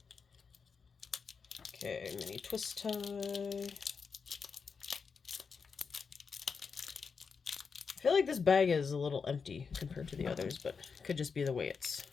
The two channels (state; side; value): quieter; right; 5.5 dB